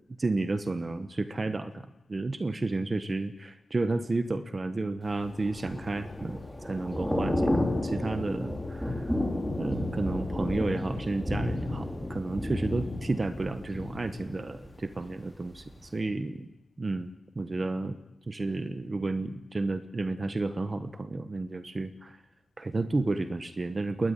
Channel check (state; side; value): normal; both; correlation 0.95